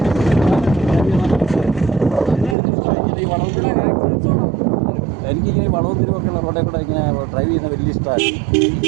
ഈ വളവിലെ ആക്സിഡൻസ് ആണ്. എനിക്കിങ്ങനെ വളവും തിരിവൊക്കെയുള്ള റോഡിൽ കൂടെ ഇങ്ങനെ ഡ്രൈവ് ചെയ്യുന്ന വലിയ ഇഷ്ടമാണ്.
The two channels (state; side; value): drops out; left; at 2.6 s